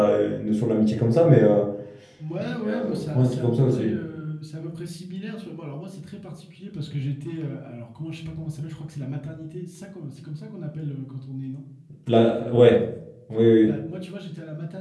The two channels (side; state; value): both; identical; correlation 1.00